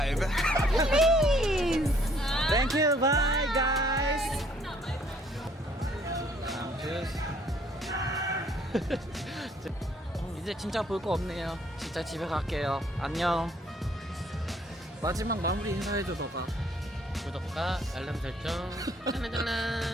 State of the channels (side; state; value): both; normal; correlation 0.63